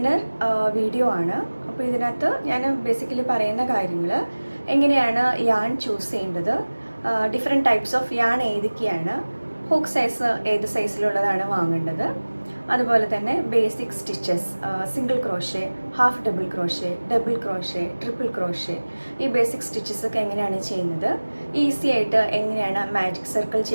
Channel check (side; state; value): both; inverted; correlation -1.00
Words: വീഡിയോ ആണ്. അപ്പോൾ ഇതിനകത്ത് ഞാൻ ബേസിക്കലി പറയുന്ന കാര്യങ്ങൾ, എങ്ങനെയാണ് യാൺ ചൂസ് ചെയ്യേണ്ടത്, ഡിഫറെൻറ്റ് ടൈപ്സ് ഓഫ് യാൺ ഏതൊക്കെയാണ്, ഹുക്ക് സൈസ് ഏത് സൈസിലുള്ളതാണ് വാങ്ങേണ്ടത്, അതുപോലെ തന്നെ basic stitches, single crochet, half double crochet, double crochet, triple crochet, ഈ ബേസിക് സ്റ്റിച്ചസ് ഒക്കെ എങ്ങനെയാണ് ചെയ്യുന്നത്, ഈസി ആയിട്ട് എങ്ങനെയാണ് മാജിക് സർക്കിൾ